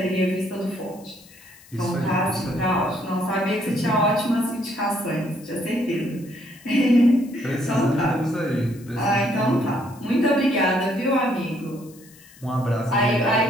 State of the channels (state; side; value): noise; left; hiss, 24 dB below the sound